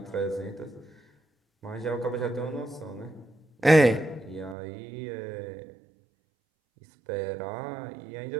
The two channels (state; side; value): drops out; left; at 4.5 s